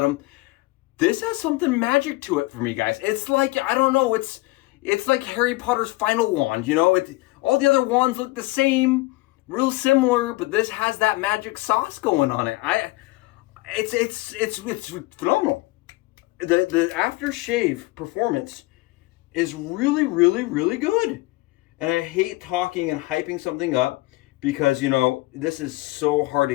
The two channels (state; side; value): quieter; right; 21.2 dB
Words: This has something magic to it for me, guys. It's like, I don't know, it's like Harry Potter's final wand, you know? All the other wands look the same, real similar, but this has that magic sauce going on it. It's phenomenal. The aftershave performance is really, really, really good. And I hate talking and hyping something up because, you know, this is so hard to